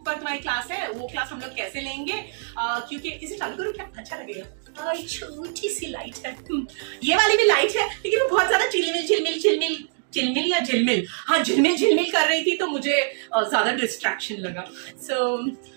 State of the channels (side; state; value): left; silent; digital silence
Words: पर तुम्हारी क्लास है, वो क्लास हम लोग कैसे लेंगे, क्योंकि इसे चालू करो क्या अच्छा लगेगा। छोटी सी लाइट है, ये वाली भी लाइट है, लेकिन वो बहुत ज्यादा चिलमिल या झिलमिल, हाँ झिलमिल कर रही थी, तो मुझे ज्यादा डिस्ट्रैक्शन लगा।